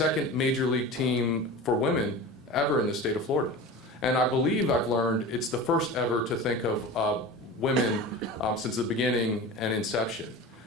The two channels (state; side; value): normal; both; correlation 0.32